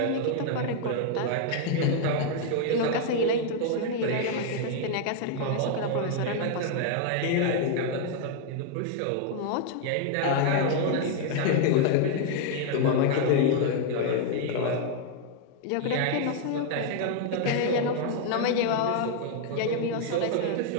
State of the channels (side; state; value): both; different; correlation 0.00